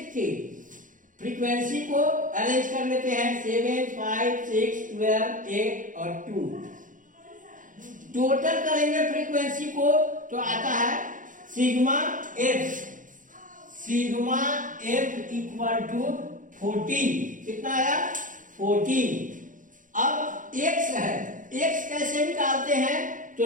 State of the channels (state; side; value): late; left; 0.38 ms